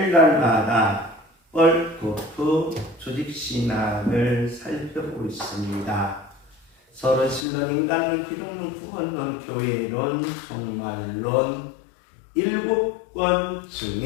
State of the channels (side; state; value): right; drops out; at 7.5 s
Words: 월코프 조직신학을 살펴보고 있습니다. 서로 신론, 인간론, 기독론, 구원론, 교회론, 종말론 7권